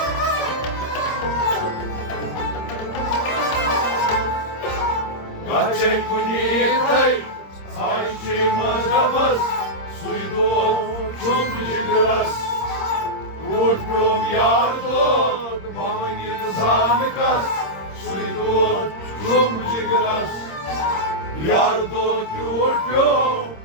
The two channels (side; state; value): right; late; 26 ms